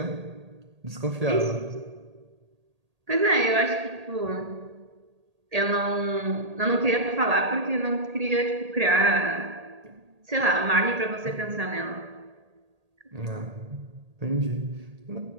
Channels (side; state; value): left; late; 1.8 ms